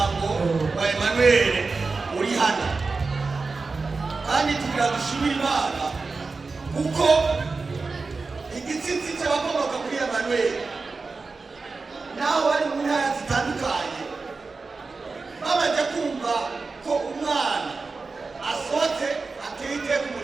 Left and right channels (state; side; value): quieter; left; 4.1 dB